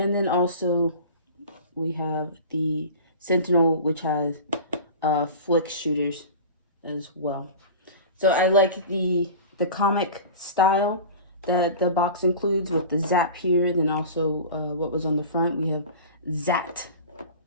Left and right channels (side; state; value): both; inverted; correlation -0.36